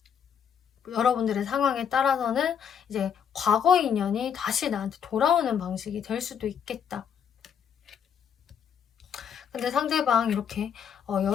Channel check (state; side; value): quieter; right; 7.9 dB